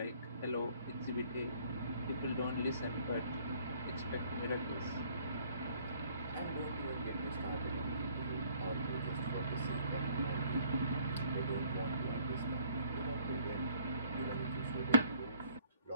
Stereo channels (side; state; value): both; inverted; correlation -0.61